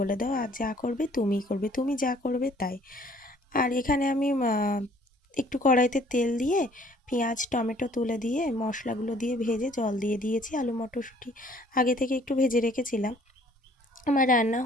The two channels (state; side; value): normal; both; correlation 0.58